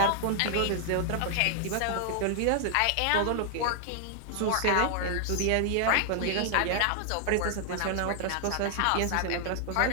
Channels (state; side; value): different; both; correlation 0.00